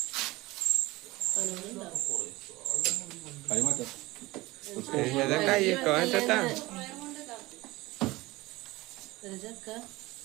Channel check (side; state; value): left; quieter; 20.4 dB